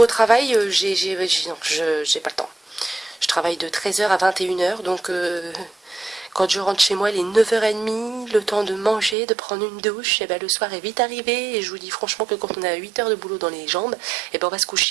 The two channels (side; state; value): left; drops out; at 9.2 s